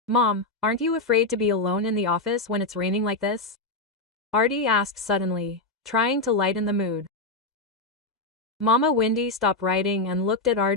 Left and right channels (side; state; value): right; quieter; 3.1 dB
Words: "Mom, aren't you afraid to be alone in the office when it's raining like this?" Artie asked suddenly, trying to lighten the mood. Mama Windy stopped writing and looked at